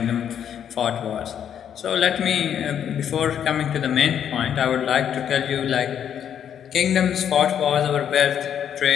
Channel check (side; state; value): right; quieter; 9.0 dB